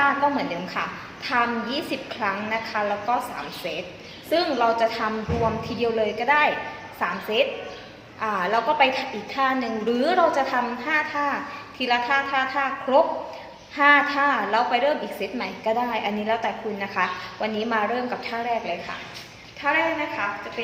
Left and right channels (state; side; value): identical; both; correlation 1.00